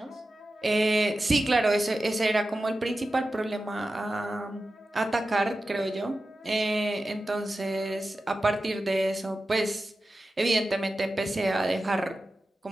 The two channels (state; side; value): normal; both; correlation 0.93